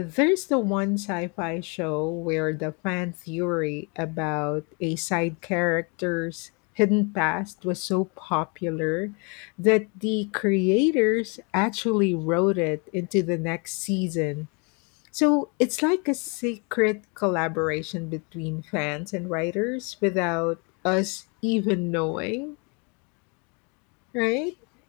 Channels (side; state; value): right; quieter; 33.4 dB